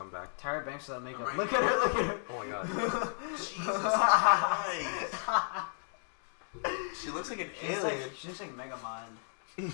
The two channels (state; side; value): silent; right; 55 dB below the other